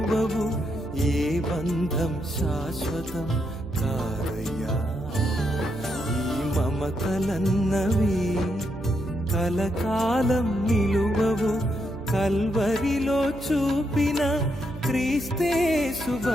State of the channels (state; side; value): noise; right; hum, 14 dB below the sound